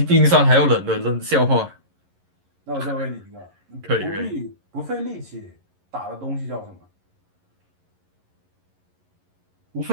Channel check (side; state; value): left; late; 11 ms